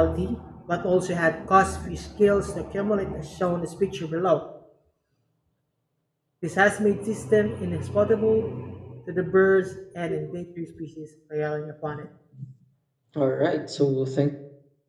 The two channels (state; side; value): identical; both; correlation 1.00